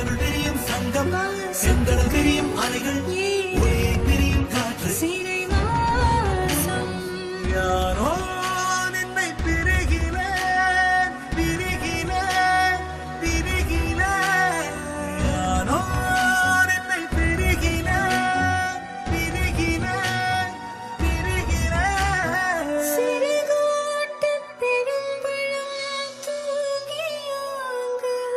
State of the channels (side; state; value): both; identical; correlation 1.00